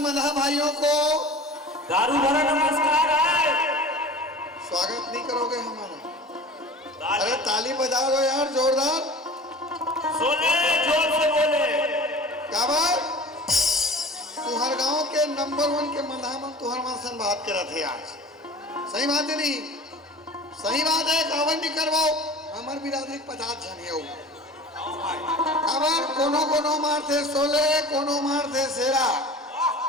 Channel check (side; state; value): both; normal; correlation 0.40